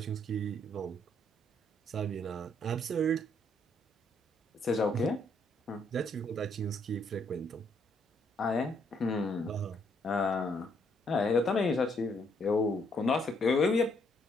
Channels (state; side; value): normal; both; correlation 0.71